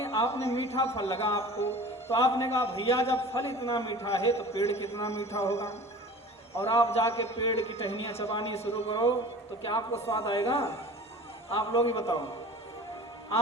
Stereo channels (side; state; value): both; normal; correlation 0.41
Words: आपने मीठा फल लगा आपको, तो आपने कहा भैया जब फल इतना मीठा है तो पेड़ कितना मीठा होगा, और आप जाके पेड़ की टहनियाँ चबानी शुरू करो तो क्या आपको स्वाद आएगा? आप लोग ही बताओ।